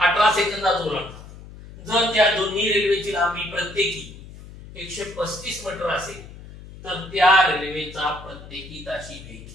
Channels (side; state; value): left; noise; hum, 16 dB below the sound